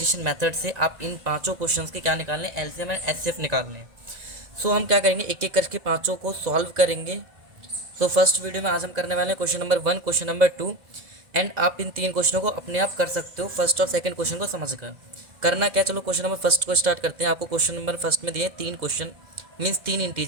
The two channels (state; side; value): late; left; 2.0 ms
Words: method से आप इन पांचों क्वेश्चंस के क्या निकालने, एलसीएम एंड एचसीएफ निकालने हैं। सो हम क्या करेंगे, एक एक करके पाँचों को सॉल्व करेंगे। तो फर्स्ट वीडियो में आज हम करने वाले हैं question number 1, question number 2 and आप इन 3 क्वेश्चनों को अपने आप कर सकते हो फर्स्ट और सेकंड क्वेश्चन को समझकर। करना क्या, चलो क्वेश्चन नंबर फर्स्ट को स्टार्ट करते हैं। आपको क्वेश्चन नंबर फर्स्ट में दिए 3 क्वेश्चन, मीन्स 3